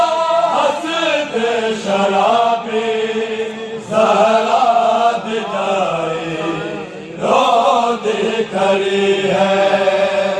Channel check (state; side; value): identical; both; correlation 1.00